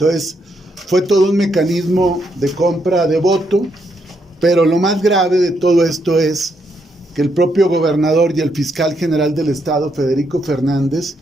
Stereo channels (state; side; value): normal; both; correlation 0.77